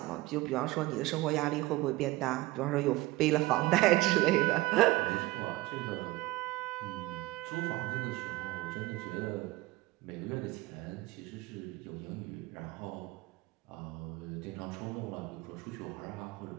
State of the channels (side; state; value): left; quieter; 19.4 dB